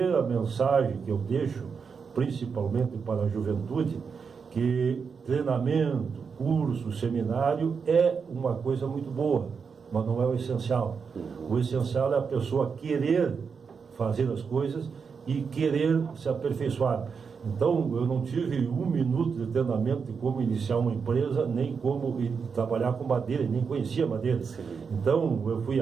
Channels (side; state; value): left; quieter; 5.8 dB